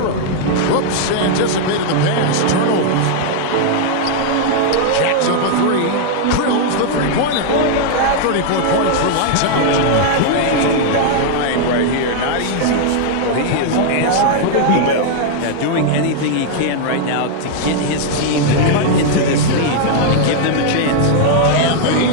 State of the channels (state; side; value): different; both; correlation 0.00